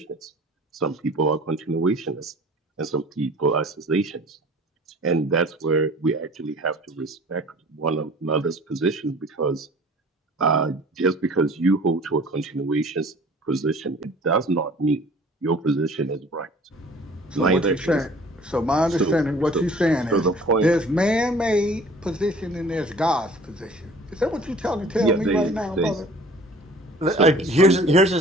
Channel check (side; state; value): both; normal; correlation 0.48